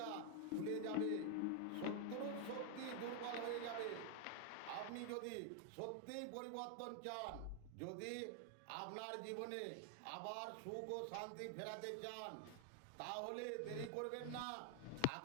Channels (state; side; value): different; both; correlation 0.00